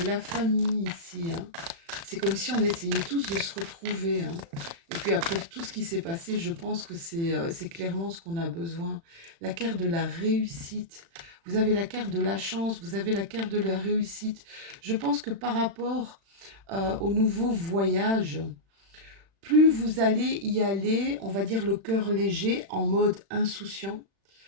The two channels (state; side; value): late; left; 36 ms